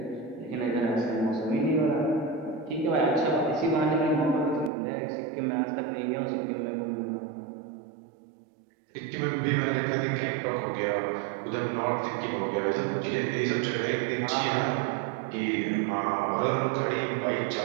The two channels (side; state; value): left; drops out; at 4.7 s